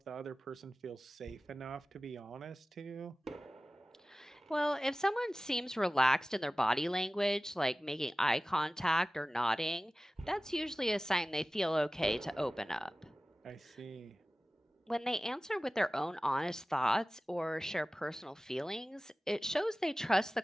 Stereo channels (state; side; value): normal; both; correlation 0.97